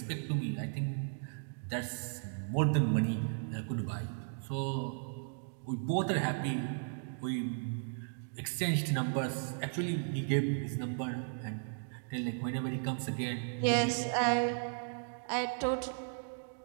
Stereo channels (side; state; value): left; silent; digital silence